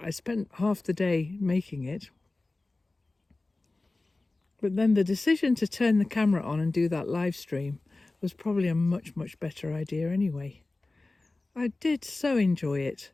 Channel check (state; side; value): quieter; right; 3.1 dB